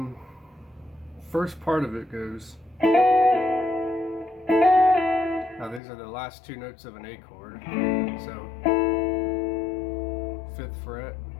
first part of it goes. Now these are the last two notes of an A chord. So 5th fret.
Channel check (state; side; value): drops out; right; at 5.8 s